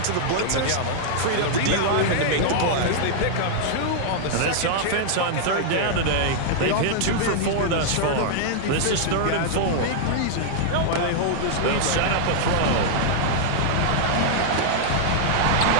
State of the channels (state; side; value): different; both; correlation -0.01